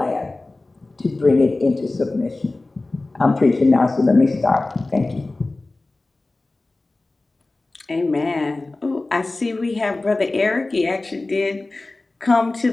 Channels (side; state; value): right; quieter; 3.1 dB